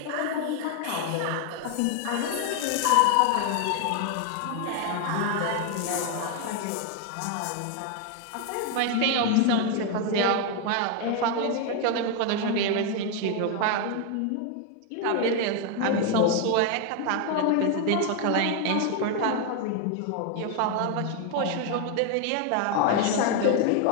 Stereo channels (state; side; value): different; both; correlation 0.01